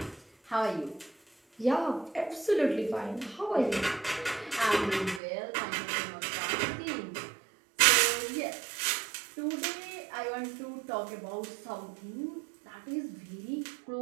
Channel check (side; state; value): left; drops out; at 5.2 s